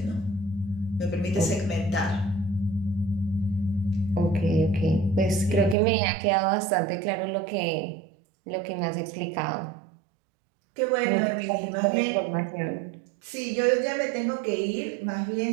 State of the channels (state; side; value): drops out; left; at 5.8 s